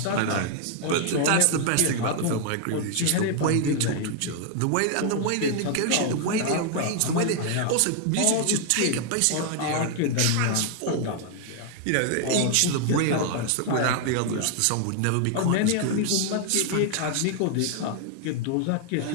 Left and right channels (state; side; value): different; both; correlation 0.00